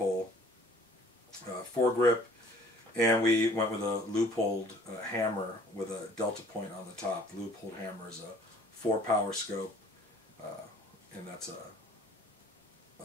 foregrip, and we went with a loopholed hammer with a delta point on the top. The loopholed hammer is a 4-power scope, and that's a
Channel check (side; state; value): both; normal; correlation 0.53